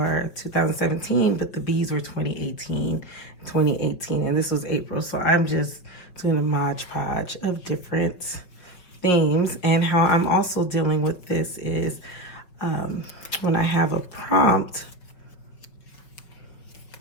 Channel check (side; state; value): right; late; 5.6 ms